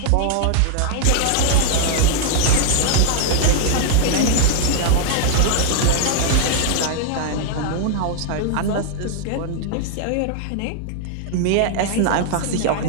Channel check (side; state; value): both; different; correlation -0.01